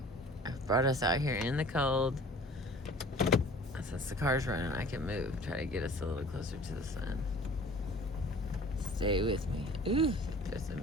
brought us out here in the cold. Since the car's running, I can move. Try to get us a little closer to the sun. Stay with me. Ooh, there's a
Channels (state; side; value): normal; both; correlation 0.47